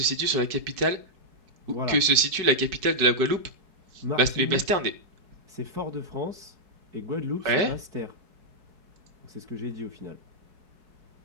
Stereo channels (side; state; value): left; late; 4.7 ms